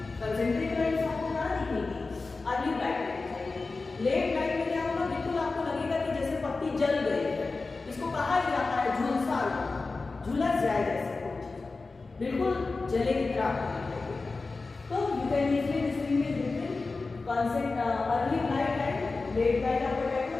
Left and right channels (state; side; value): quieter; right; 3.8 dB